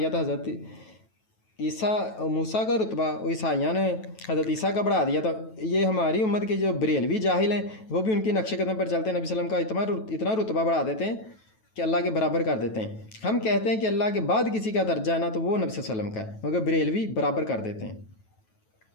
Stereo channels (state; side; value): late; right; 9.2 ms